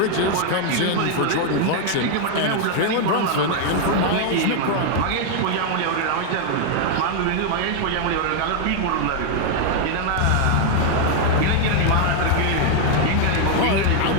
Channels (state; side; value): different; both; correlation 0.00